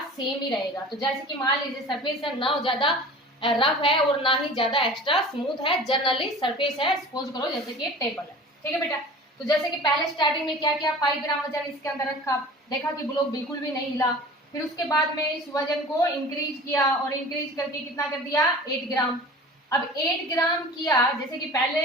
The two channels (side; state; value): both; normal; correlation 0.40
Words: सेम ही रहेगा। तो जैसे कि मान लीजिए सरफेस है ना ज्यादा रफ है और ना ही ज्यादा एक्स्ट्रा स्मूथ है, जनरली सरफेस है, सपोज करो जैसे कि टेबल है। ठीक है बेटा? तो जैसे कि पहले स्टार्टिंग में क्या किया, 5 ग्राम वजन इसके अंदर रखा, देखा कि ब्लॉक बिल्कुल भी नहीं हिला, फिर उसके बाद में इस वजन को इंक्रीज किया और इंक्रीज करके कितना कर दिया, 8 ग्राम। अब 8 ग्राम किया, जैसे कि पहले